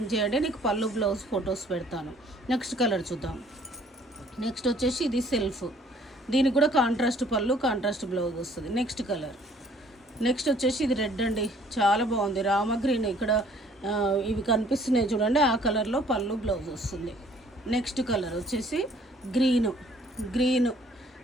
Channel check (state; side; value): normal; both; correlation 0.59